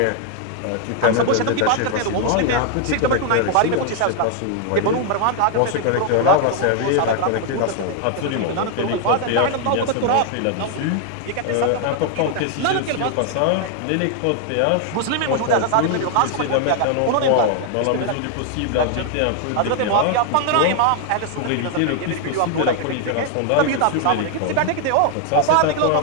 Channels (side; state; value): both; different; correlation 0.00